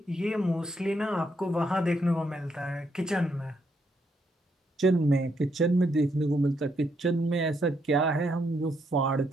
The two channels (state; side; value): normal; both; correlation 0.76